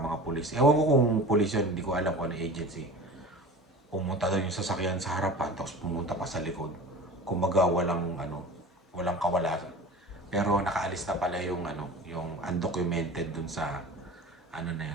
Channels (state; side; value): normal; both; correlation 0.36